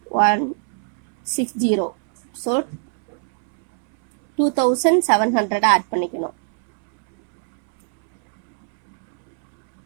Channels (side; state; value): left; silent; 65 dB below the other